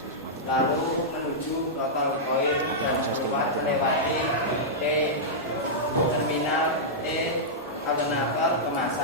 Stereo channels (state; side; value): normal; both; correlation -0.10